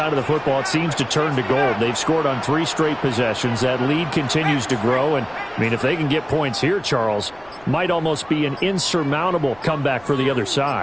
of the football, it seems to turn to gold. They've scored on 3 straight possessions. That lead continues to grow. And, I mean, if they can get points here, Charles, might almost be an insurmountable comeback for the other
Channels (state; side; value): noise; left; rumble, 27 dB below the sound